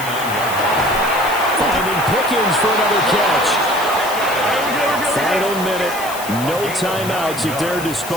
line. Finding Pickens for another catch. Final minute. No timeouts at their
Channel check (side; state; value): left; noise; hiss, 11 dB below the sound